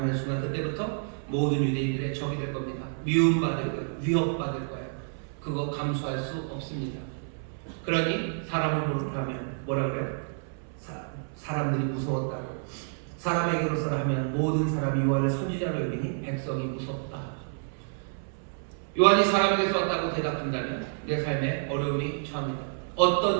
순간 그때부터 모든 유대인들의 적이 될 겁니다. 미움받을 거예요. 위협받을 거예요. 그거 감수할 수 없습니다. 그러니 사람으로 하면 뭐라 그래요? 사람들이 무서웠다고. 사람에게로서라 하면 모든 사람이 요한을 선지자로 여기니 백성이 무섭다. 요한이 사람에게서 왔다고 대답한다면 내 삶에 어려움이 처합니다.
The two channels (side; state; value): left; silent; 59 dB below the other